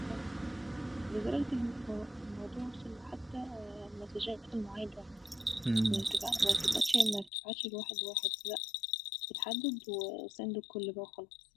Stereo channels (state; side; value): drops out; right; at 7.3 s